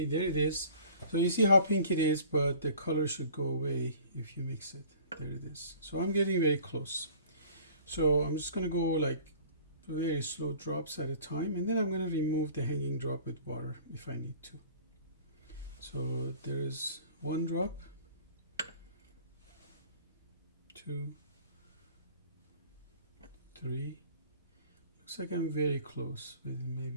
there it is. So you see how pink it is, but the color should go away if you mix it. There it is. So I'm getting very close. So I'm just going to go like very slow drops at a time, and then I'm going to remove the hanging drop with water if I need to. So there is 1 drop, 2, 3. Looks like I'm very close. With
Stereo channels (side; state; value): both; inverted; correlation -0.48